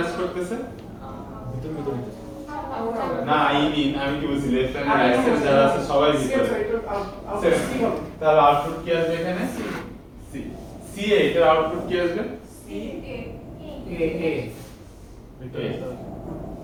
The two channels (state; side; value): identical; both; correlation 1.00